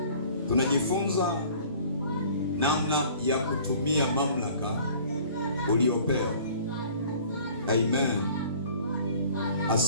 Tunajifunza namna ya kutumia mamlaka uliyopewa. Amen.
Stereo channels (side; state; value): both; inverted; correlation -0.50